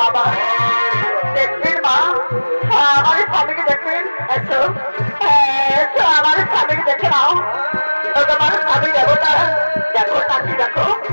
দেখবেন মা, আমার স্বামীকে দেখবেন। এসো এসো, আমার স্বামীকে দেখে নাও। তোমার স্বামী দেবতা, দেখো তাকে দেখো।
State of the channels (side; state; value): both; inverted; correlation -1.00